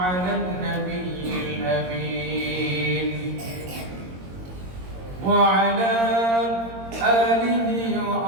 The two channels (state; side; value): late; left; 22 ms